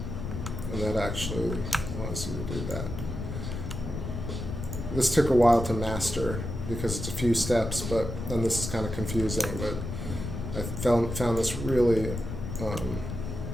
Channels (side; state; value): left; noise; rumble, 5 dB below the sound